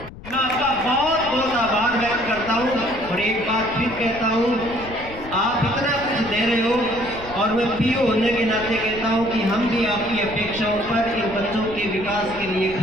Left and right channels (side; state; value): left; noise; rumble, 15 dB below the sound